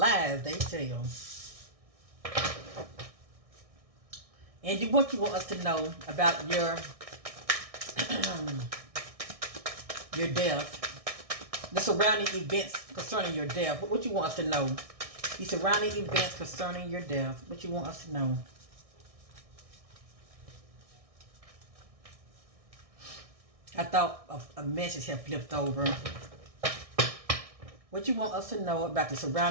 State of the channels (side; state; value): left; late; 1.6 ms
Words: they tell. Angie, what you want us to know about your your death? The surrounding events concerning your death. What you want us to know? The surrounding events concerning your death. What you want us to know? I thought a message had flipped over. What you want us to know about the